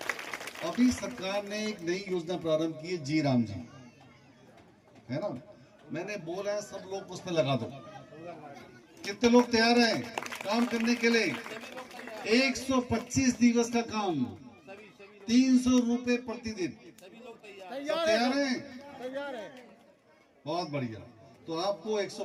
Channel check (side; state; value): both; identical; correlation 1.00